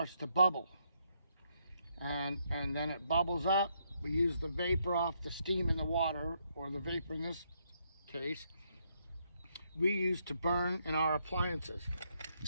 to bubble. And then it bubbles up. We use the vapor off the steam in the water, or the vapor in this case, we use to burn in our appliances.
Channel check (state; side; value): inverted; both; correlation -0.75